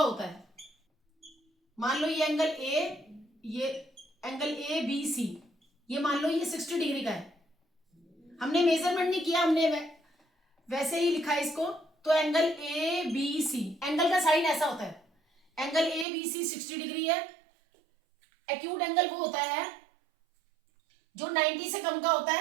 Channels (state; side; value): drops out; left; at 16.1 s